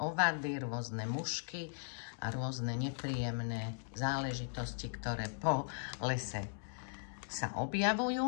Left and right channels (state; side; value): silent; right; digital silence